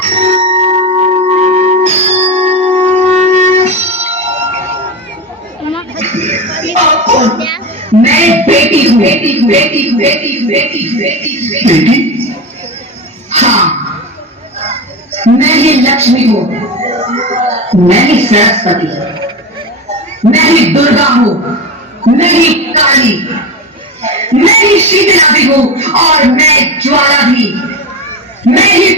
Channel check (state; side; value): normal; both; correlation 0.21